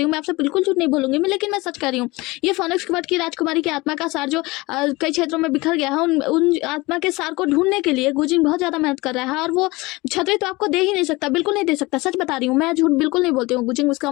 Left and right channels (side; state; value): right; quieter; 22.4 dB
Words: हूँ, मैं आपसे बिल्कुल झूठ नहीं बोलूंगी मैं, लेकिन मैं सच कह रही हूँ। ये फोनिक्स क्वार्ट की राजकुमारी की आत्मा का सार जो कई क्षेत्रों में बिखर गया है, उन आत्मा के सार को ढूंढने के लिए गुजिंग बहुत ज्यादा मेहनत कर रहा है, और वो छतरी तो आपको दे ही नहीं सकता, बिल्कुल नहीं दे सकता, सच बता रही हूँ मैं, झूठ बिल्कुल नहीं बोलती हूँ। गुजिंग उसका